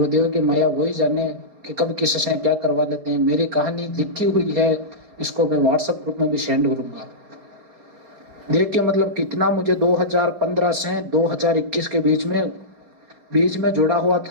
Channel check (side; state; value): left; late; 4.3 ms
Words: की माया वही जाने कि कब किससे क्या करवा लेते हैं। मेरी कहानी लिखी हुई है इसको मैं व्हाट्सएप ग्रुप में भी सेंड करूंगा। देखिए मतलब कितना मुझे 2015 से 2021 के बीच में जुड़ा हुआ